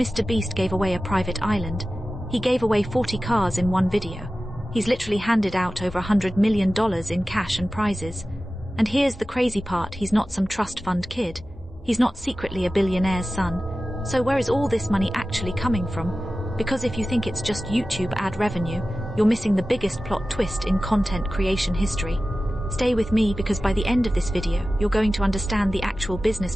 gave away a private island. He gave away 40 cars in one video. He's literally handed out over $100 million in cash and prizes. And here's the crazy part, he's not some trust fund kid. He's not secretly a billionaire's son. So where is all this money actually coming from? Because if you think it's just YouTube ad revenue, you're missing the biggest plot twist in content creation history. Stay with me, because by the end of this video, you're going to understand the actual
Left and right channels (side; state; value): both; normal; correlation 0.95